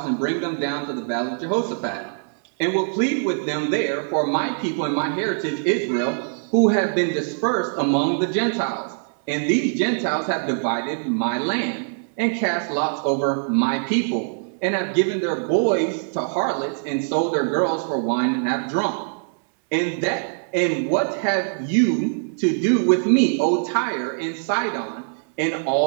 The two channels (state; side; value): silent; left; 64 dB below the other